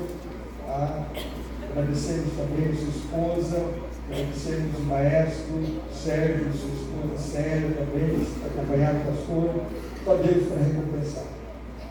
Agradecemos também a sua esposa, agradecemos o maestro Sérgio, sua esposa Célia também, acompanhado do pastor. Só Deus para recompensar.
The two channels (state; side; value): identical; both; correlation 1.00